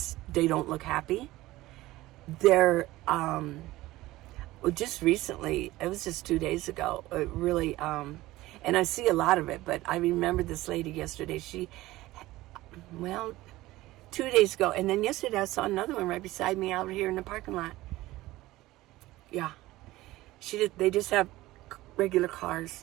look happy. They're just recently, it was just 2 days ago, it really, and I see a lot of it, but I remember this lady yesterday, 2 days ago, and then yesterday I saw another one right beside me out here in the parking lot. Yeah, they just have regular cars.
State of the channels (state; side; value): quieter; left; 17.6 dB